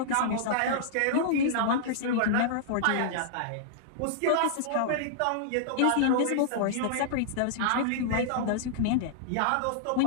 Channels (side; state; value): both; different; correlation -0.01